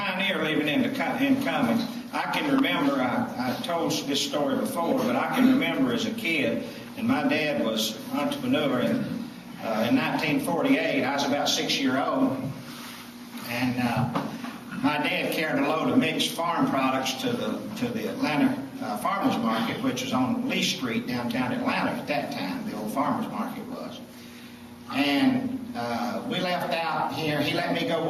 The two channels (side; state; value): both; identical; correlation 1.00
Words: living in Cumming. I can remember, I told this story before, but I can remember as a kid, and my dad was an entrepreneur in 1948. I was about 6 years old, and my dad carried a load of mixed farm products to the Atlanta Farmers Market, which was on Lee Street, downtown Atlanta at that time. The old Farmers Market was. And we left out here. He let me go